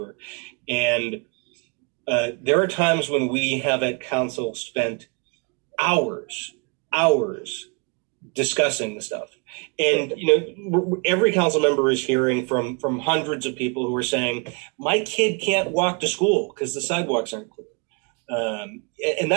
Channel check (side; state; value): left; quieter; 34.1 dB